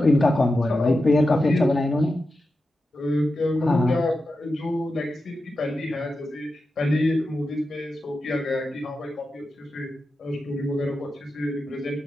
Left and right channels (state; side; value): normal; both; correlation 0.91